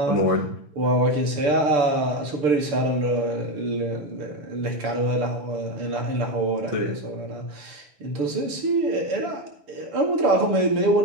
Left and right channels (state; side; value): late; left; 6.8 ms